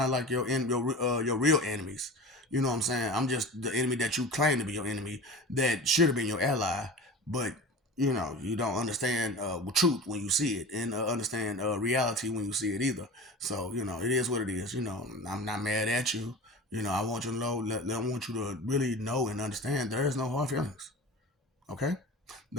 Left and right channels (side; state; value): both; normal; correlation 0.34